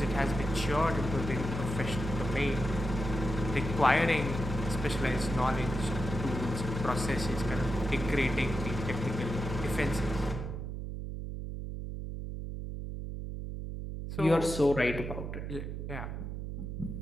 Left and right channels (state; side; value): noise; right; hum, 6 dB below the sound